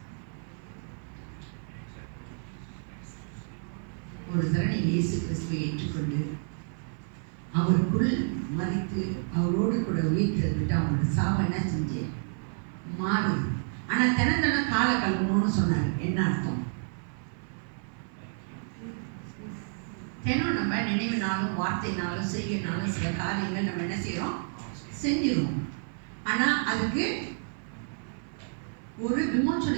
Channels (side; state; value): left; silent; 58 dB below the other